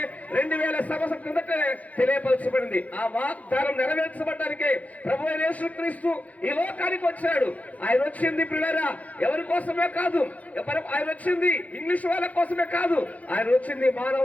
2000 సంవత్సరాల క్రితమే తెలియపరచబడింది. ఆ వాగ్దానం నెరవేర్చబడడానికి ప్రభు అయిన యేసుక్రీస్తు ఈ లోకానికి వచ్చాడు. ఆయన వచ్చింది పిల్లరా ఎవరి కోసమే కాదు, ఆయన వచ్చింది ఇంగ్లీష్ వాళ్ళ కోసమే కాదు, ఆయన వచ్చింది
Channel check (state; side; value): late; right; 0.071 ms